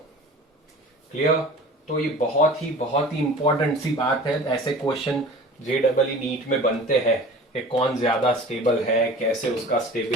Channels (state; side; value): normal; both; correlation 0.41